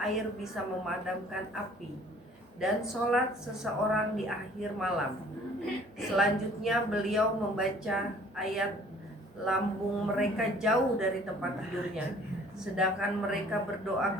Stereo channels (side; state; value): both; normal; correlation 0.54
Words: air bisa memadamkan api, dan sholat seseorang di akhir malam. Selanjutnya beliau membaca ayat, lambung mereka jauh dari tempat tidurnya, sedangkan mereka berdoa